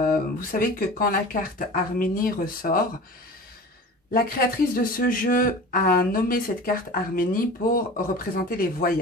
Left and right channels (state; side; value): normal; both; correlation 0.37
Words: savez que quand la carte Harménie ressort, la créatrice de ce jeu a nommé cette carte Harménie pour représenter les